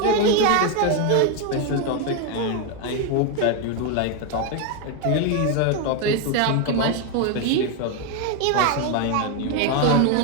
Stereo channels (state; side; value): different; both; correlation 0.01